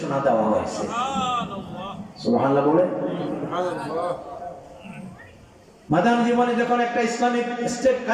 দেওয়া হয়েছে। সুবহানাল্লাহ বলে। মাদানী জীবনে যখন একটা ইসলামিক স্টেট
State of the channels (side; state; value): both; identical; correlation 1.00